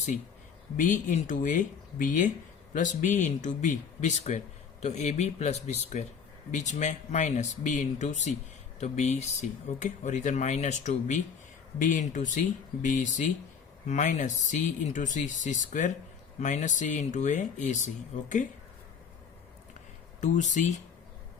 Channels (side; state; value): right; quieter; 6.6 dB